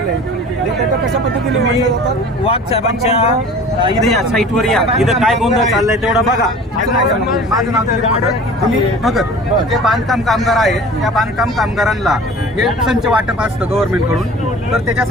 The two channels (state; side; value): normal; both; correlation 0.43